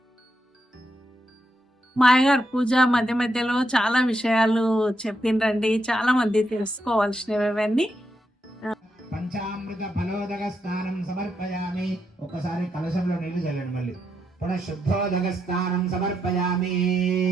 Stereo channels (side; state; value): both; normal; correlation 0.81